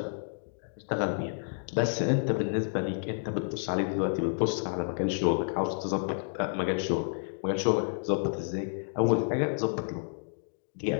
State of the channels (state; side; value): silent; right; digital silence